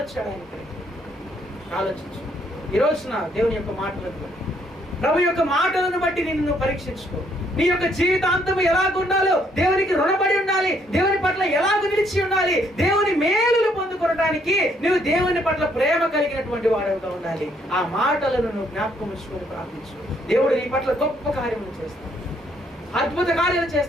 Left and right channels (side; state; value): both; normal; correlation 0.68